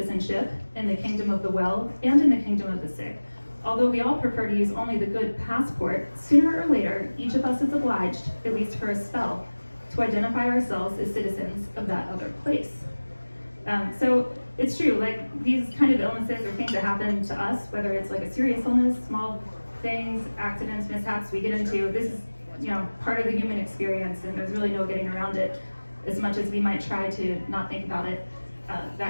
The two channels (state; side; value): inverted; both; correlation -1.00